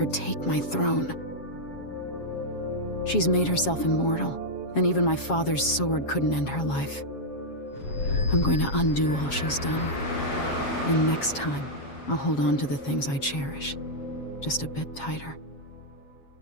take my throne. She's made herself immortal, and even my father's sword couldn't end her life. I'm going to undo all she's done. And next time, I'll hold on to the things I cherish, just a bit tighter.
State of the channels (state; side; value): late; right; 7.3 ms